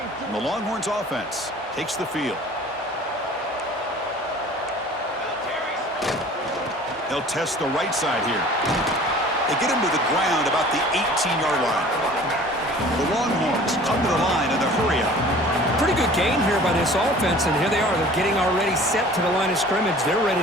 And the Longhorns offense takes the field. They'll test the right side here. They get him to the ground about the 18-yard line. The Longhorns come to the line in the hurry-up. Pretty good game here by this offense, and here they are. They're getting already set to the line of scrimmage. They're ready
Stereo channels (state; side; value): normal; both; correlation 0.46